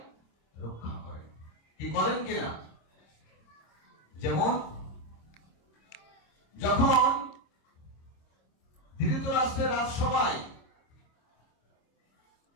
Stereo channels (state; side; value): late; right; 26 ms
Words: রক্ষা করেন। কি করেন কিনা, যেমন যখন ধৃতরাষ্ট্রের রাজসভায়